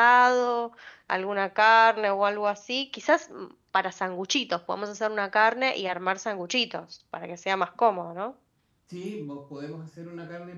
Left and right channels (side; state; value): both; identical; correlation 1.00